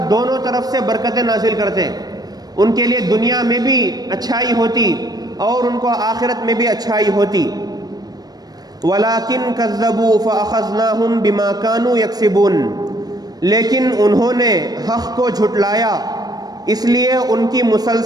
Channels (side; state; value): left; late; 0.19 ms